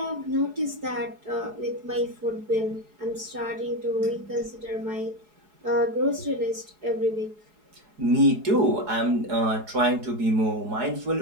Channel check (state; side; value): late; left; 4.7 ms